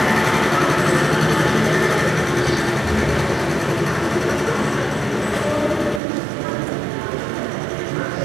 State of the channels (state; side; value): drops out; left; at 6.0 s